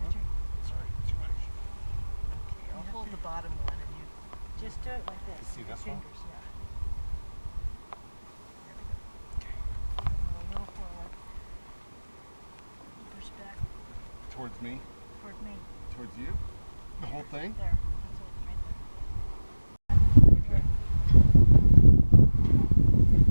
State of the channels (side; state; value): both; inverted; correlation -1.00